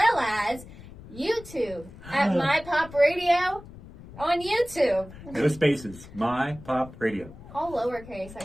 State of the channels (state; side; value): noise; left; rumble, 17 dB below the sound